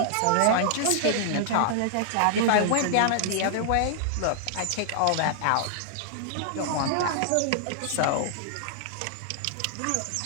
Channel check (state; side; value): different; both; correlation -0.01